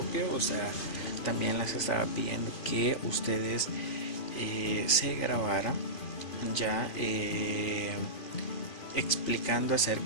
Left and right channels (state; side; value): late; right; 2.4 ms